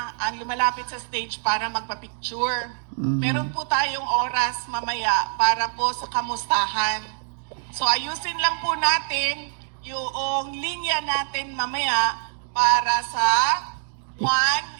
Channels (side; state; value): left; silent; digital silence